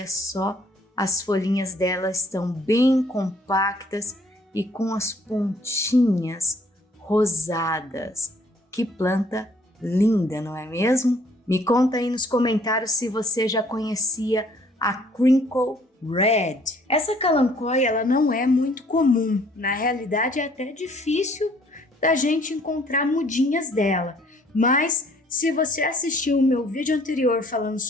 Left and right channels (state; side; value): normal; both; correlation 0.60